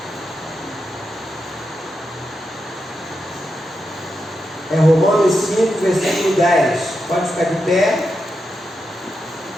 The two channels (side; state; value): both; normal; correlation 0.86